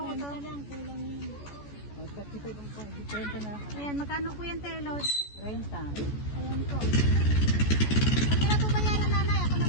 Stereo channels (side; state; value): right; late; 14 ms